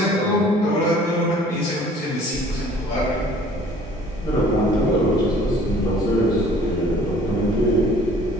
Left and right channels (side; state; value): both; normal; correlation 0.52